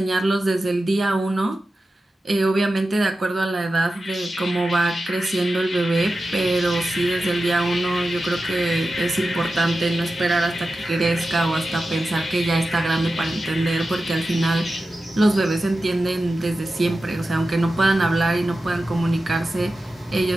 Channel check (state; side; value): normal; both; correlation 0.93